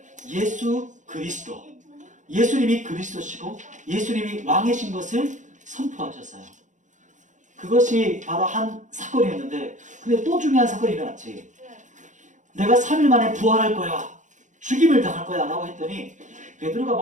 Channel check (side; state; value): left; late; 0.36 ms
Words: 예수 그리스도, 예수님이 그리스도시고 예수님이 왕이신 것을 선포하셨어요. 그것이 바로 한 사건이었는데, 근데 또 중요한 사건이 일어났지. 내가 3일 만에 부활할 거야, 죽임을 당할 거야 라고 했더니 베드로가 막